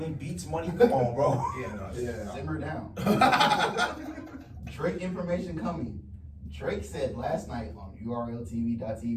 Beats money. Come on, bro. Yeah, no, Yeah. Simmer down. Drake information coming. Drake said last night on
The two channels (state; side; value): identical; both; correlation 1.00